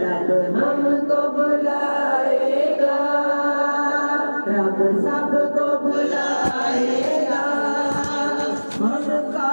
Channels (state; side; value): inverted; both; correlation -1.00